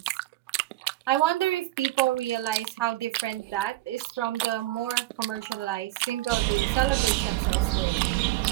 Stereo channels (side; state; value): left; quieter; 17.1 dB